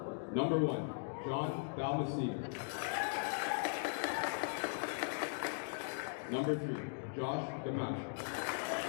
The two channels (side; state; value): right; silent; digital silence